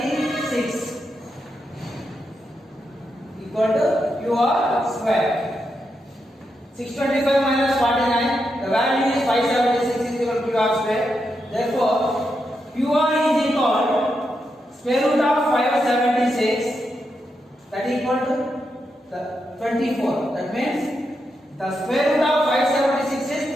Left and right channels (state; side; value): normal; both; correlation 0.84